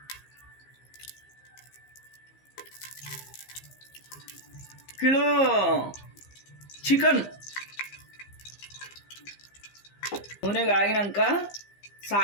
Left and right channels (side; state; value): right; late; 15 ms